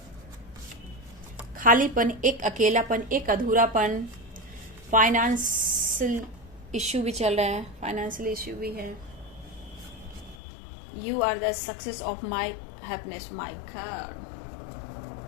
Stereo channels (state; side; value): drops out; right; at 10.4 s